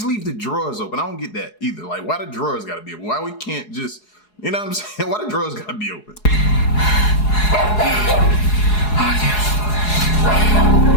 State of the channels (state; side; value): late; right; 4.8 ms